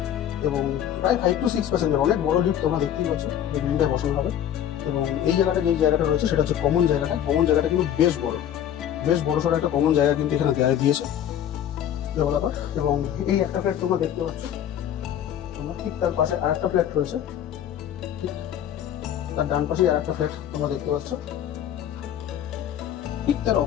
এবং প্রায় 5 to 6 প্যাসেঞ্জার, অনেক বড় লিফট তোমরা দেখতেই পাচ্ছ যে বিল্ডিংটা বসানো হবে। এবং এই জায়গাটা যে জায়গাটা রয়েছে সেটা হচ্ছে কমন জায়গাটা কিন্তু বেশ বড় সড়ো একটা কমন জায়গা কিন্তু এখানে দিয়েছে ডেভেলপার। এবং এই একটা ফ্ল্যাট তোমরা দেখতে পাচ্ছ, তোমরা ঠিক তার পাশে আর একটা ফ্ল্যাট রয়েছে, ঠিক তার ডান পাশে আর একটা ফ্ল্যাট তোমরা দেখতে পাচ্ছ, ঠিক তার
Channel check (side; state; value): right; quieter; 10.3 dB